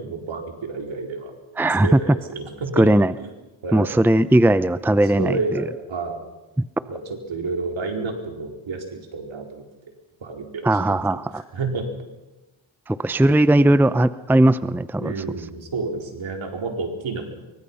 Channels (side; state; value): both; normal; correlation 0.81